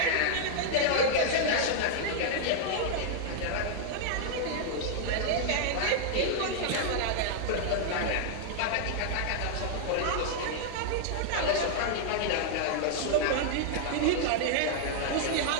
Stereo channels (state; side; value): different; both; correlation -0.01